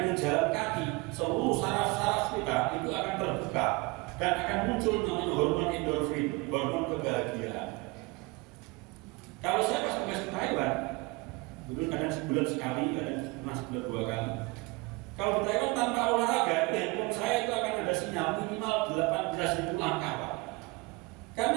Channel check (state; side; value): quieter; left; 25.0 dB